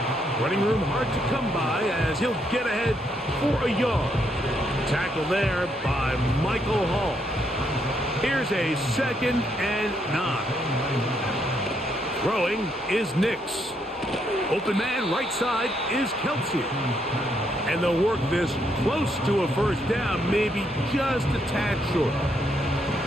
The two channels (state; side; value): normal; both; correlation 0.75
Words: Running room hard to come by as he'll get ahead for a yard. Tackle there by Michael Hall. Here's a 2nd and 9. Throwing is Nix. Open man right side is Kelsey. And they'll work this close to a 1st down, maybe just a tad short.